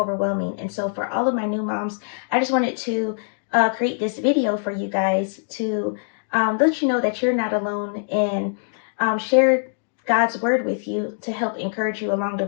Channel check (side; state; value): right; silent; digital silence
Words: And so for all of my new moms, I just wanted to create this video for you guys to let you know that you're not alone, and share God's word with you to help encourage you along the